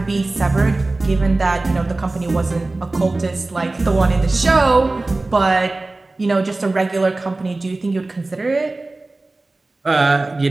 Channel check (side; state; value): left; quieter; 3.1 dB